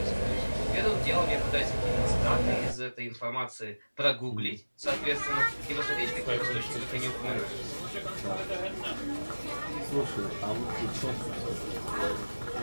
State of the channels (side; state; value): both; inverted; correlation -1.00